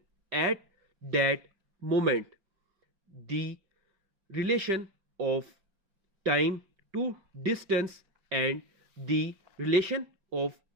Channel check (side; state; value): left; late; 5.2 ms